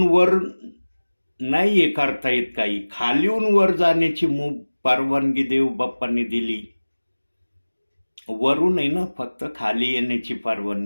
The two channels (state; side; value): inverted; both; correlation -1.00